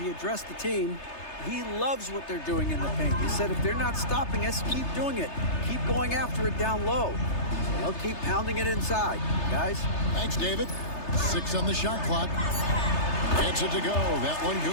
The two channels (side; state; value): right; late; 3.3 ms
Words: addressed the team. He loves what they're doing in the paint. He said if they're not stopping us, keep doing it. Keep going after it down low. So they'll keep pounding it inside, guys. Thanks, David. 6 on the shot clock. Gets it to go. That one